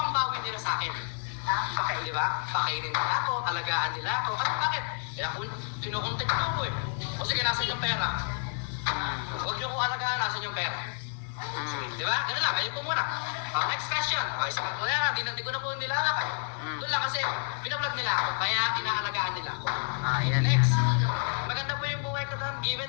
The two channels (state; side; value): silent; right; 58 dB below the other